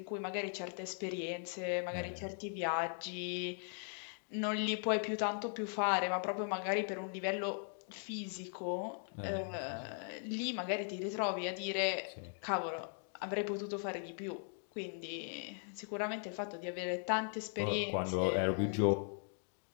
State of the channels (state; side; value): silent; right; 52 dB below the other